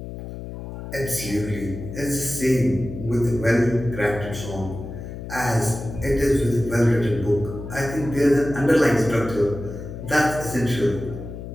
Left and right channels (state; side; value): noise; left; hum, 10 dB below the sound